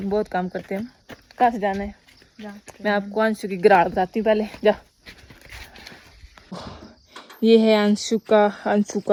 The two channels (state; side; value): identical; both; correlation 1.00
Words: काम करते हैं। कहाँ से जाना है? मैं आपको अंशु की गिराड़ बताती हूँ पहले। जा, ये है अंशु